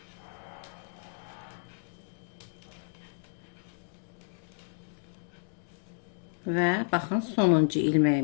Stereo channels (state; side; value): silent; right; digital silence